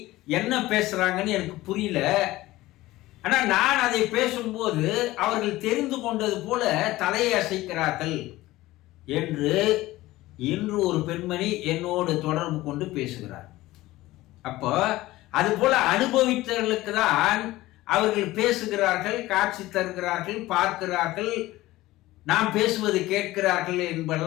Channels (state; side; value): quieter; right; 17.6 dB